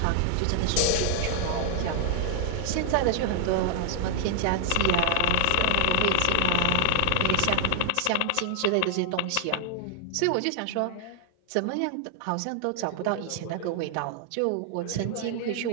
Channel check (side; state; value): both; different; correlation 0.00